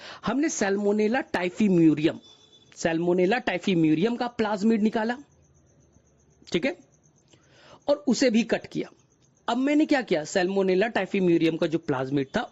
हमने सैल्मोनेला टाइफीम्यूरियम, सैल्मोनेला टाइफीम्यूरियम का प्लाज्मिड निकाला, ठीक है, और उसे भी कट किया। अब मैंने क्या किया? सैल्मोनेला टाइफीम्यूरियम का जो प्लाज्मिड था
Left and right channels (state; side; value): identical; both; correlation 1.00